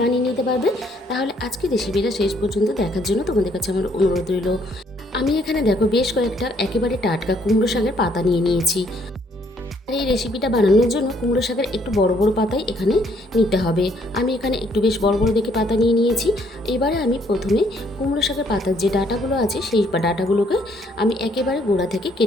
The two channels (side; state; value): both; normal; correlation 0.67